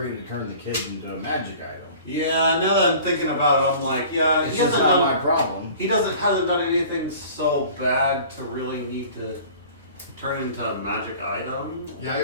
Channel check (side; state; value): both; inverted; correlation -0.45